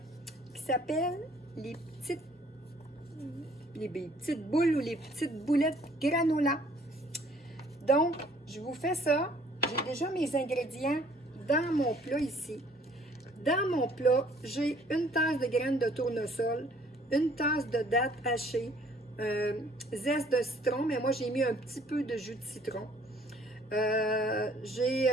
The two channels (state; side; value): normal; both; correlation 0.59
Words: qui s'appelle les petites boules ou les petites boulettes granola. Donc, je vous fais ça. J'ai déjà mes ingrédients dans mon plat ici. Dans mon plat, j'ai une tasse de graines de tournesol, une tasse de dattes hachées, zeste de citron, mais moi j'ai mis un petit peu de jus de citron. J'ai